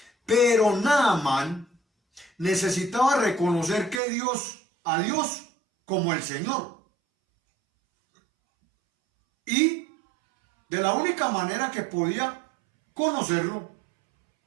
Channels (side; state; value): left; drops out; at 4.0 s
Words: pero Naamán necesitaba reconocer que a Dios como el Señor. Y de la única manera que podía conocerlo